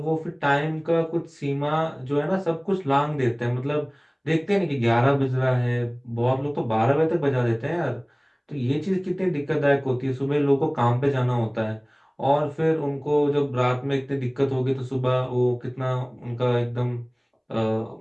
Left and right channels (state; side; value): identical; both; correlation 1.00